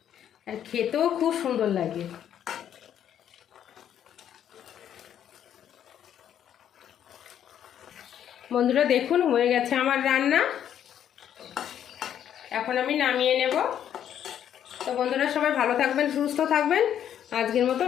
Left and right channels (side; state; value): right; quieter; 9.9 dB